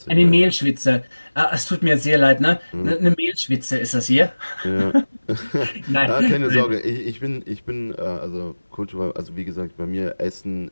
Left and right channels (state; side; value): inverted; both; correlation -1.00